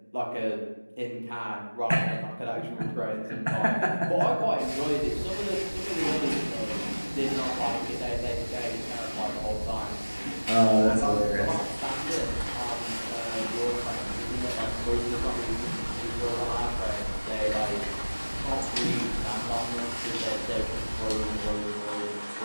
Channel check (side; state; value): both; inverted; correlation -1.00